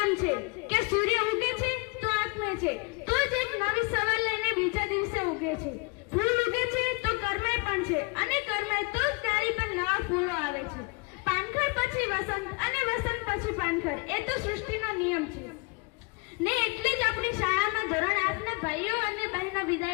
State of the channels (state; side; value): quieter; right; 30.4 dB